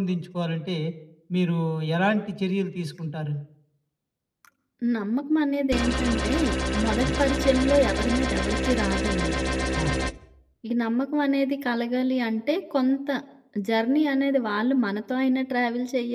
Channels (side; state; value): both; identical; correlation 1.00